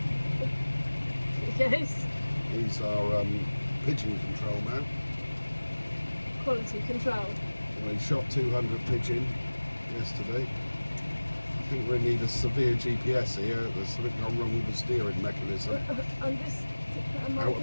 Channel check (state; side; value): inverted; both; correlation -1.00